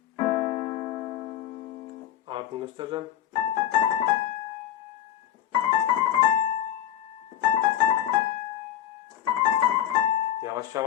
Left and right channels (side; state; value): right; quieter; 11.2 dB